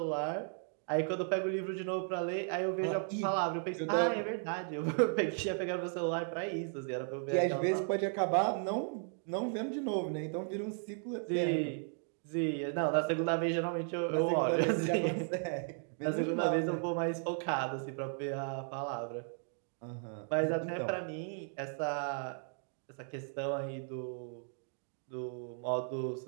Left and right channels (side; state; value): left; silent; 54 dB below the other